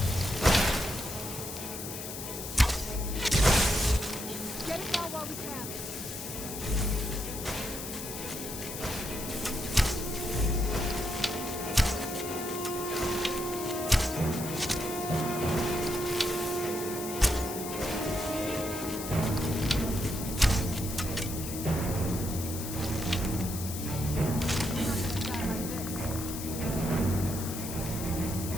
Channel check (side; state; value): left; noise; hiss, 8 dB below the sound